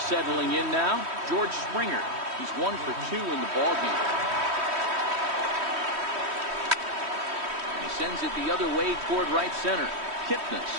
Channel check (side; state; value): left; late; 3.1 ms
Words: in now, George Springer. He's 1 for 2 in the ballgame. And he sends it the other way toward right center. Kipnis